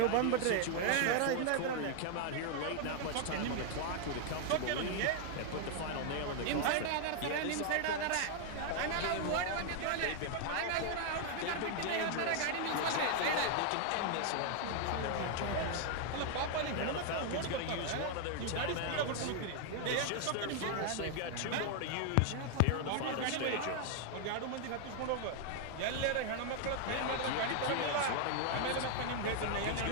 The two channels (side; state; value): both; different; correlation 0.00